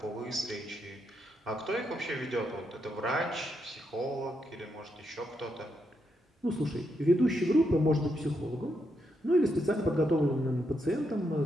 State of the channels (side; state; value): both; normal; correlation 0.81